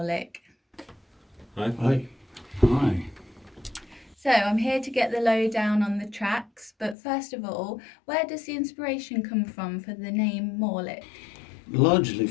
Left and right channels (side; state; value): right; drops out; at 7.0 s